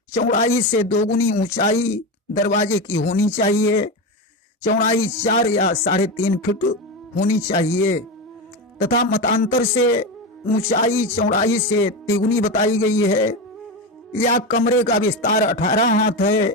चौड़ाई से 2 गुनी ऊंचाई दरवाजे की होनी चाहिए। चौड़ाई 4 या 3.5 फीट होनी चाहिए तथा मतांतर से ऊंचाई चौड़ाई से 3 गुनी बताई गई है। या कमरे का विस्तार 18 हाथ है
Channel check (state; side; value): normal; both; correlation 0.17